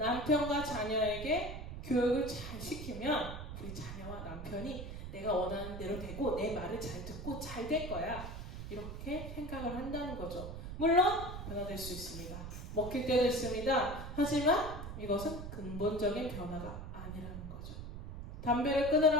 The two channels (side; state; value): right; noise; rumble, 8 dB below the sound